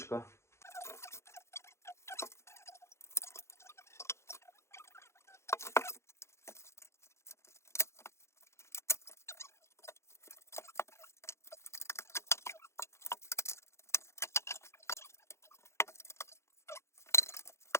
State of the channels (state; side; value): late; right; 0.13 ms